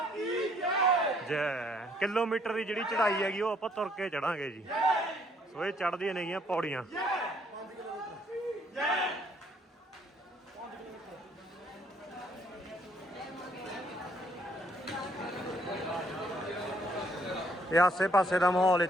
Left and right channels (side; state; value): both; normal; correlation 0.66